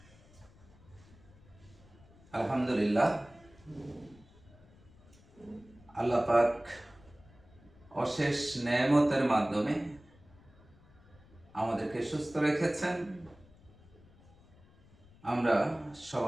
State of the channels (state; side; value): noise; left; rumble, 25 dB below the sound